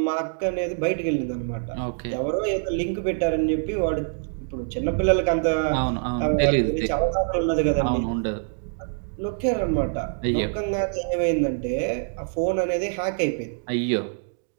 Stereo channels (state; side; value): silent; left; digital silence